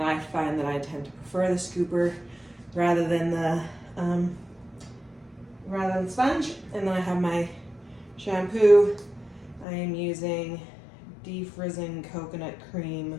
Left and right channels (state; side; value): drops out; right; at 9.7 s